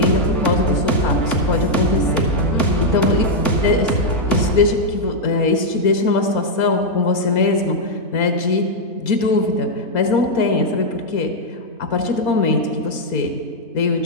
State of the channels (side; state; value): right; late; 4.3 ms